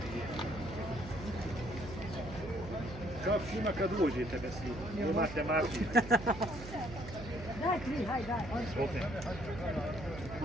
Kako šima kad uđete bez njih? Imate marki. Daj 3, haj, daj. Opet.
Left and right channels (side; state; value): right; noise; hum, 11 dB below the sound